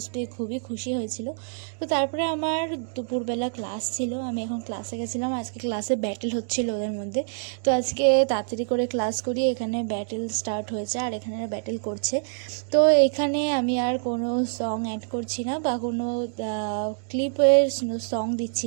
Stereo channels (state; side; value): silent; left; digital silence